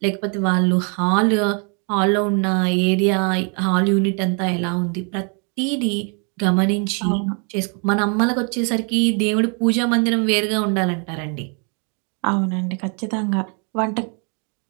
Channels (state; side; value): quieter; left; 37.4 dB